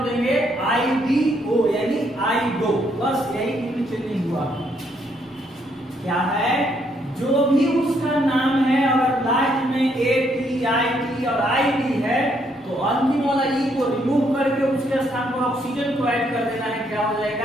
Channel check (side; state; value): both; normal; correlation 0.72